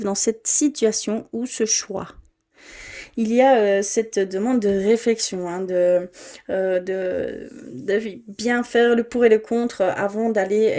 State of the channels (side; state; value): both; identical; correlation 1.00